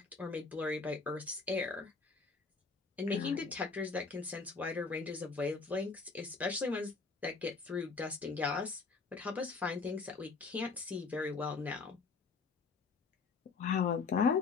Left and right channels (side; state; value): right; quieter; 4.5 dB